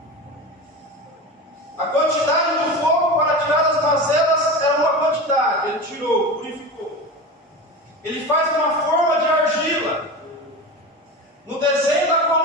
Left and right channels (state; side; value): normal; both; correlation 0.27